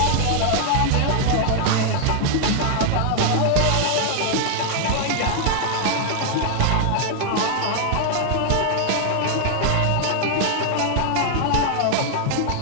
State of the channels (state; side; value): different; both; correlation 0.00